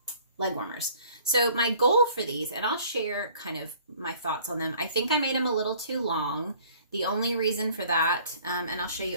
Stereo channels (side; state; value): both; inverted; correlation -0.54